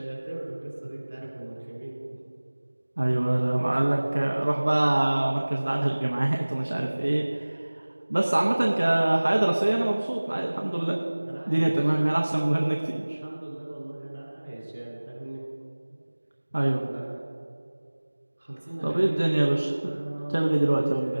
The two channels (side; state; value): both; inverted; correlation -1.00